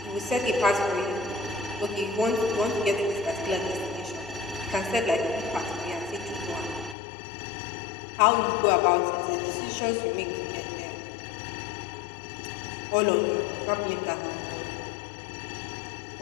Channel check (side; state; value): right; drops out; at 7.0 s